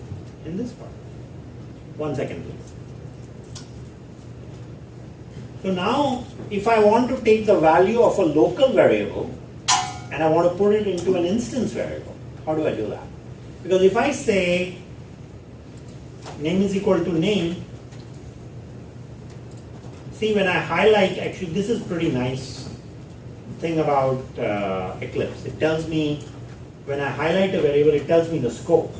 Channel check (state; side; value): identical; both; correlation 1.00